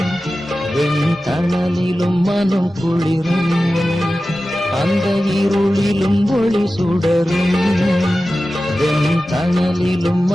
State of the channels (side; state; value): both; normal; correlation 0.94